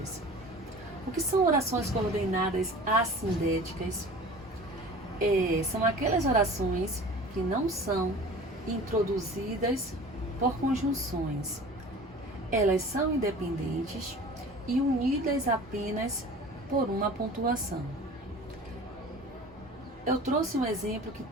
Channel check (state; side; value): normal; both; correlation 0.41